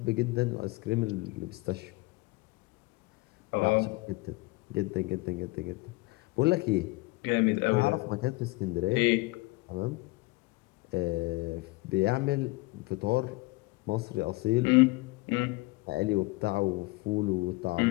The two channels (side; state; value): right; quieter; 23.4 dB